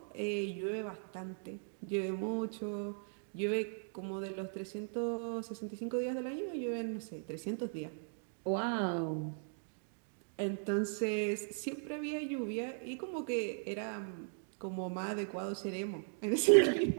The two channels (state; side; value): silent; left; digital silence